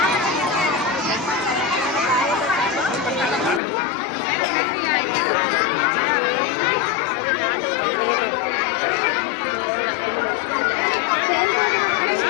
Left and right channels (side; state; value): right; drops out; at 3.6 s